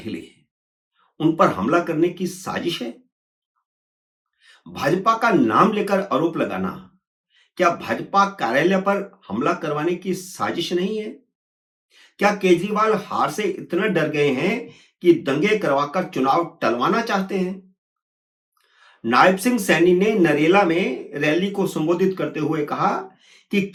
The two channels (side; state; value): both; identical; correlation 1.00